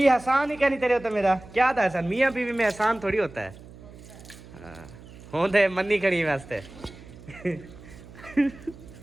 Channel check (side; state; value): right; noise; hum, 19 dB below the sound